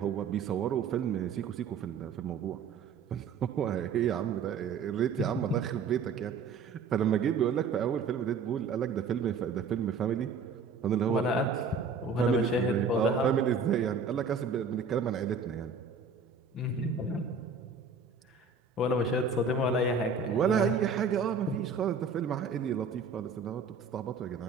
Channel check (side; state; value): left; quieter; 4.9 dB